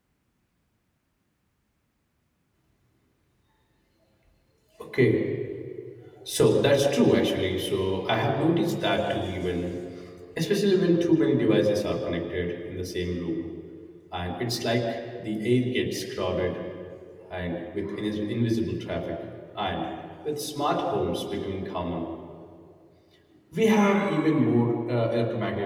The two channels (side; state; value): both; identical; correlation 1.00